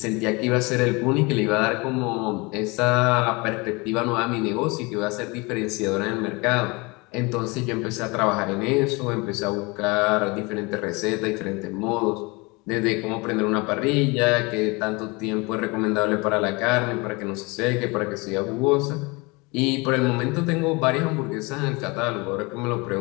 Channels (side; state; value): right; quieter; 26.5 dB